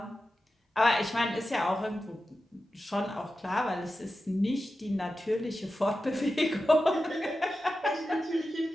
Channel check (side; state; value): both; normal; correlation 0.92